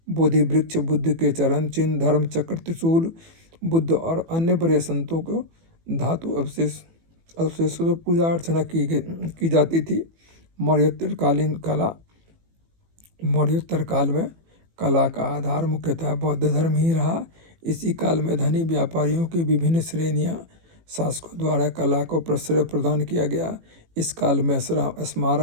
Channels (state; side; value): late; left; 18 ms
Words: बोधि वृक्ष, बुद्ध के चरण चिन्ह, धर्म चक्र, त्रिशूल, बुद्ध और अन्य बड़े संतों को धातु अवशेषों से पूजा अर्चना की जाती थी। मौर्योत्तर काल में कला का आधार मुख्यतः बौद्ध धर्म ही रहा। इसी काल में धनी व्यापारियों की विभिन्न श्रेणियां शासकों द्वारा कला को प्रश्रय प्रदान किया गया। इस काल में